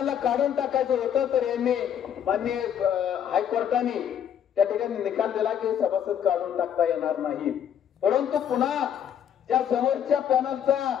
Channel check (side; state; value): right; quieter; 9.1 dB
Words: काढून टाकायचं होतं तर यांनी माननीय हायकोर्टाने त्या ठिकाणी निकाल दिला की सभासद काढून टाकता येणार नाही। परंतु पुन्हा त्या समोरच्या पॅनलचा